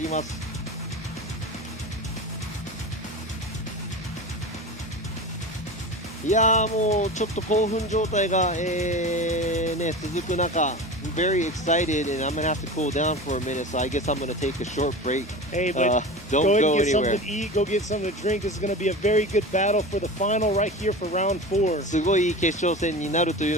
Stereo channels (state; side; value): normal; both; correlation 0.30